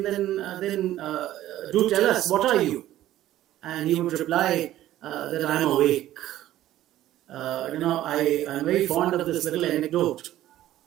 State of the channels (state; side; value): quieter; left; 13.7 dB